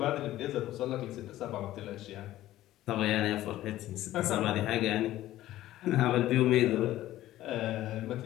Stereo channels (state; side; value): quieter; right; 14.7 dB